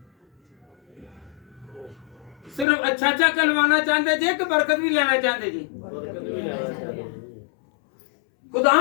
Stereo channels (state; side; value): drops out; right; at 2.7 s